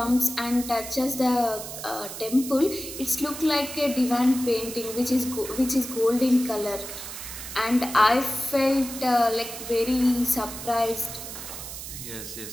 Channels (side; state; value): right; noise; hiss, 9 dB below the sound